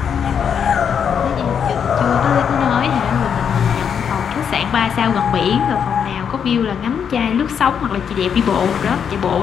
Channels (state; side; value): quieter; right; 7.5 dB